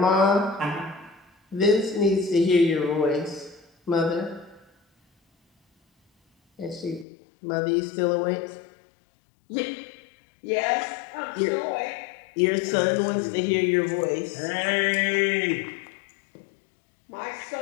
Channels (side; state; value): right; drops out; at 7.1 s